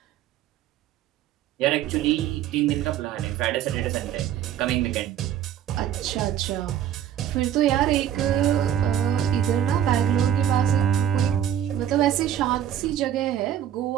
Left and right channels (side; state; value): left; quieter; 10.3 dB